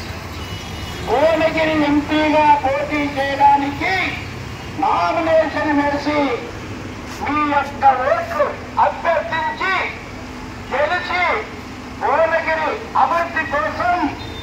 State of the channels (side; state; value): both; identical; correlation 1.00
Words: భువనగిరి ఎంపీగా పోటీ చేయడానికి నామినేషన్ వేసి మీ యొక్క ఓట్లు అభ్యర్థించి గెలిచి భువనగిరి అభివృద్ధి కోసం